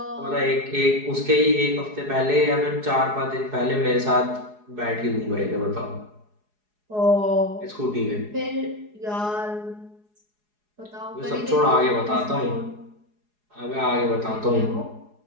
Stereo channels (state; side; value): late; left; 4.8 ms